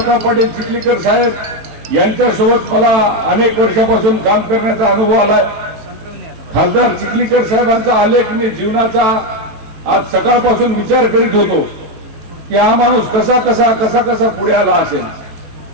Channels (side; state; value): left; late; 18 ms